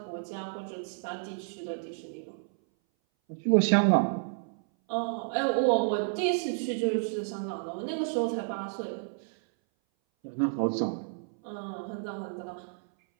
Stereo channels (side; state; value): left; silent; 57 dB below the other